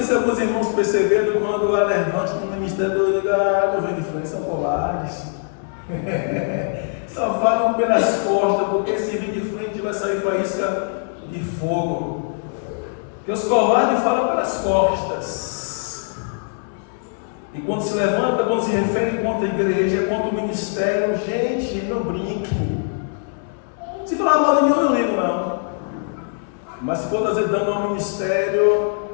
se alguns irmãos perceberam quando há levante no ministério, eu digo: não vem de frente, são covardes. Só falam pelas costas, porque se vir de frente vai sair faísca de fogo. Porque os covardes falam pelas costas. E quando se levanta, quando se refere contra a igreja, contra o ministério, gente, não brinque. Se falar mal de mim, eu não ligo, não. Mas se for trazer dano ao ministério,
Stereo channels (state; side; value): silent; right; digital silence